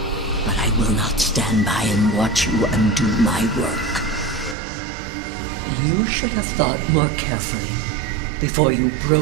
But I will not stand by and watch you undo my work. You should have thought more carefully before you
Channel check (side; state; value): left; drops out; at 4.5 s